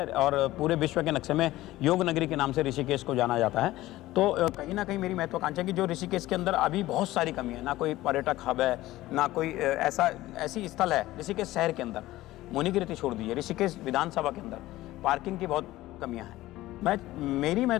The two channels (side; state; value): right; quieter; 16.7 dB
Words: और पूरे विश्व के नक्शे में योग नगरी के नाम से ऋषिकेश को जाना जाता है। तो कहीं ना कहीं मेरी महत्वाकांक्षा है कि जो ऋषिकेश के अंदर अभी बहुत सारी कमी है, ना कोई पर्यटक हब है, ना कोई ऐसी स्थल है ऋषिकेश शहर के अंदर, मुनिकीर्ति छोड़ दीजिए, ऋषिकेश विधानसभा के अंदर पार्किंग की बहुत कमियाँ हैं। मेरी